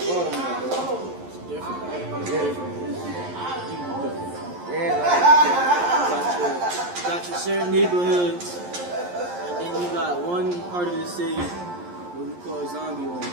bro. It's different. Yeah, Got your certain neighborhoods, and then you got one part of the city what we call Zombie Land.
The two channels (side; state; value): left; late; 11 ms